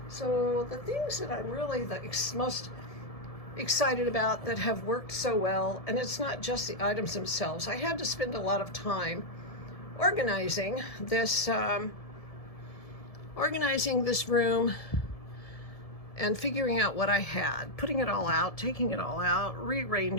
So the things that I'm really the most excited about that have worked so well, and it's not just the items themselves. I had to spend a lot of time organizing this room and figuring out what I had, putting it all out, taking it all out,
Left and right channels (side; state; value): right; late; 1.7 ms